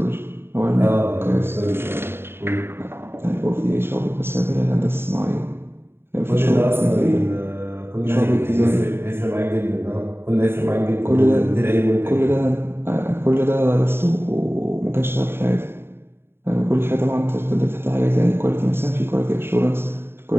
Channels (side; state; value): left; late; 0.11 ms